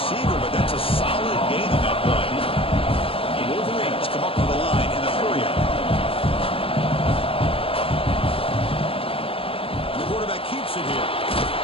but that's a solid gain on that play. The Wolverines come up to the line in a hurry up. And the quarterback keeps it here.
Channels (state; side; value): late; right; 0.27 ms